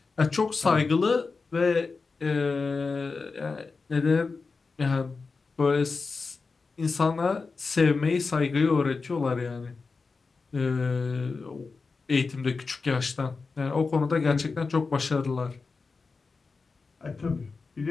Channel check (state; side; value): quieter; right; 4.4 dB